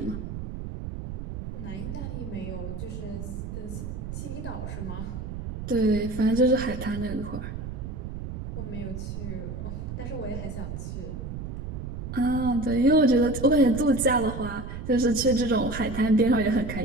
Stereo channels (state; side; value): noise; right; rumble, 7 dB below the sound